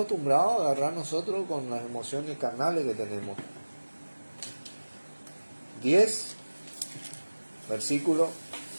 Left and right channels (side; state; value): both; inverted; correlation -1.00